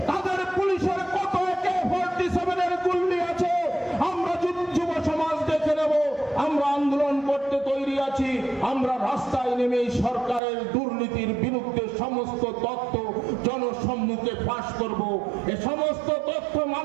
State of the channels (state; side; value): drops out; left; at 10.4 s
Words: তাদের পুলিশের কত AK-47 এর গুলি আছে, আমরা যুব সমাজ দেখে নেব। আমরা আন্দোলন করতে তৈরি আছি। আমরা রাস্তায় নেমে সরকারের দুর্নীতির বিরুদ্ধে সমস্ত তথ্য জনসম্মুখে ফাঁস করব। এই সমস্ত তথ্য